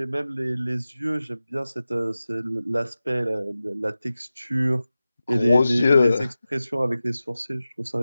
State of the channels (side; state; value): both; inverted; correlation -0.95